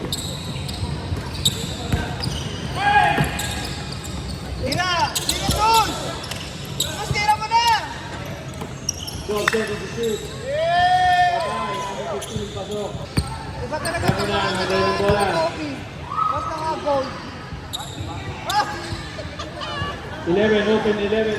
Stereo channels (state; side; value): identical; both; correlation 1.00